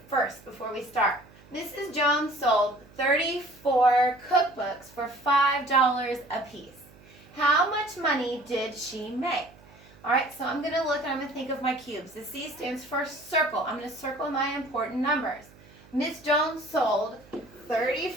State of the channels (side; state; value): right; noise; hum, 25 dB below the sound